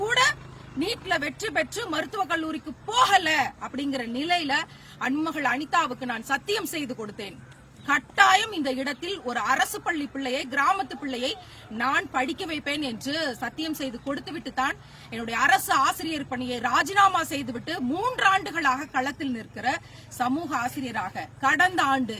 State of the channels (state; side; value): identical; both; correlation 1.00